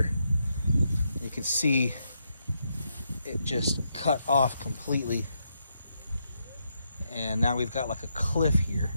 You can see it just cut off completely, and now we've got like a cliff here.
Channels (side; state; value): both; inverted; correlation -0.80